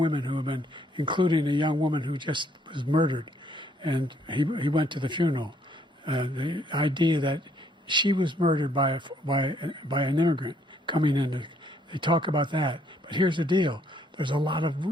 who have been, including a young woman who just was murdered, and he went to the funeral. The idea that she was murdered by an immigrant coming in, they talk about that. But here's the deal: there's a lot of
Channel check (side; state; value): both; normal; correlation 0.67